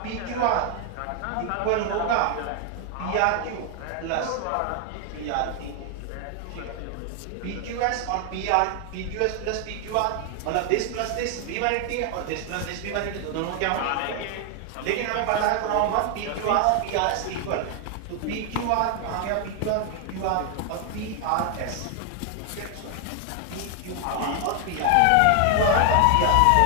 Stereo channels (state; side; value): different; both; correlation 0.00